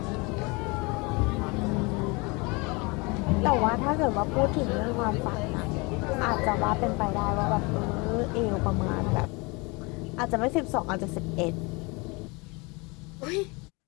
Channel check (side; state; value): right; quieter; 27.7 dB